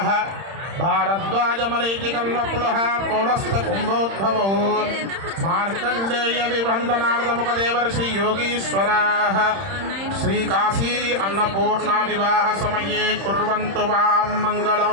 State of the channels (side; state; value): left; late; 31 ms